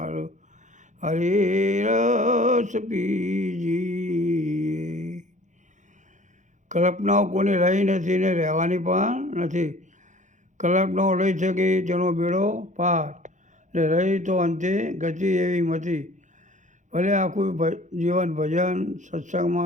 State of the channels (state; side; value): late; left; 0.35 ms